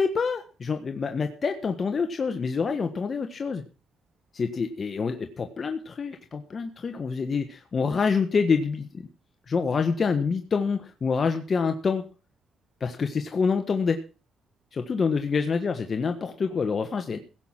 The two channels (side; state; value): right; quieter; 4.9 dB